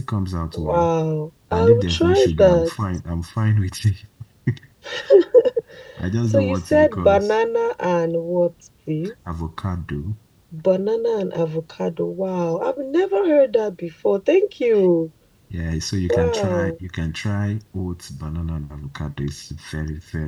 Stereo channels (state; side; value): identical; both; correlation 1.00